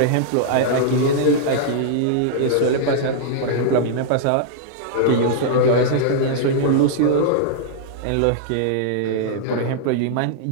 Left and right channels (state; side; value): different; both; correlation -0.02